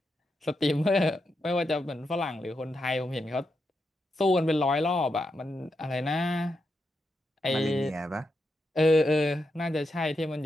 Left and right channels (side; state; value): both; normal; correlation 0.85